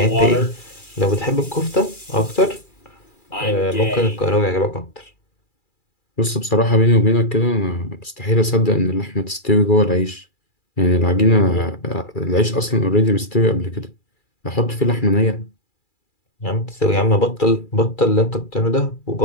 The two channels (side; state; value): right; late; 2.4 ms